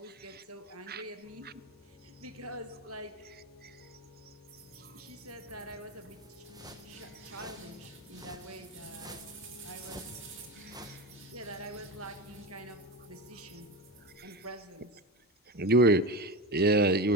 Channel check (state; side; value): normal; both; correlation 0.22